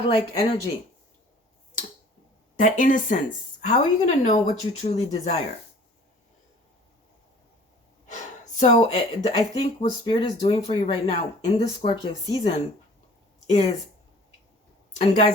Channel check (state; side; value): normal; both; correlation 0.49